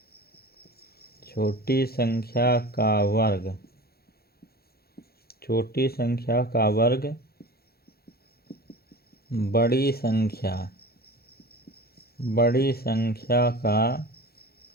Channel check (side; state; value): right; late; 0.45 ms